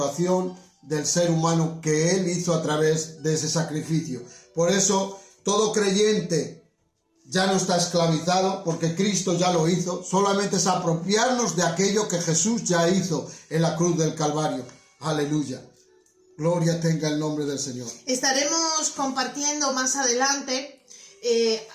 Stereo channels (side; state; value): both; identical; correlation 1.00